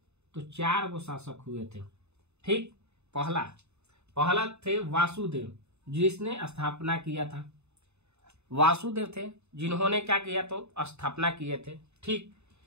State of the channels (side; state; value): left; late; 0.81 ms